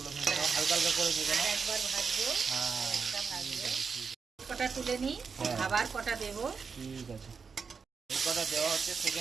ভেজে নাও, হালকা হালকা করে ভেজে নাও। একবার ভাজবো, হ্যাঁ, একটা ভাজবো, কটা তুলে নিই, আবার কটা দেবো। ঠিক আছে, এই কটা দেওয়া হচ্ছে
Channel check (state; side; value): quieter; left; 5.5 dB